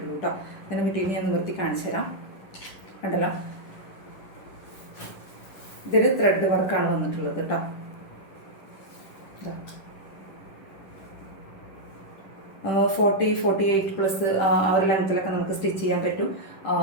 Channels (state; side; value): late; right; 10 ms